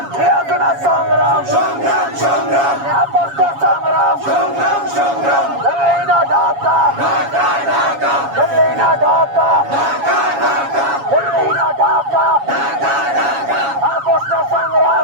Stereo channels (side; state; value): left; late; 7.2 ms